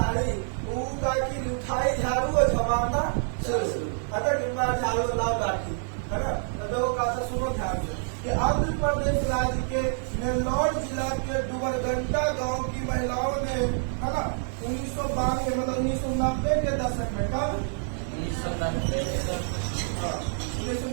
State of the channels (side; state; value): left; silent; digital silence